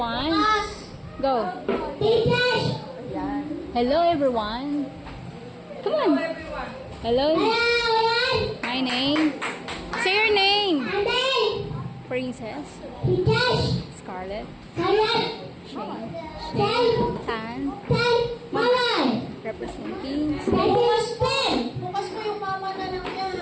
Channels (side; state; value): both; identical; correlation 1.00